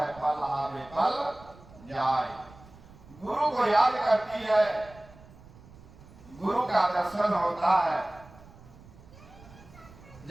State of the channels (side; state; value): right; noise; rumble, 22 dB below the sound